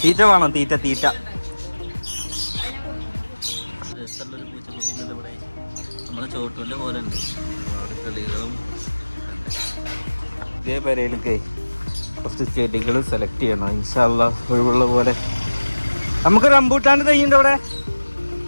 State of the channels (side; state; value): both; inverted; correlation -1.00